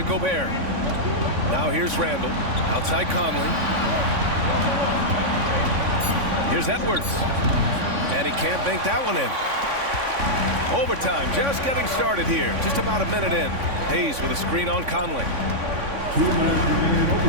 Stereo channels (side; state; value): left; late; 3.5 ms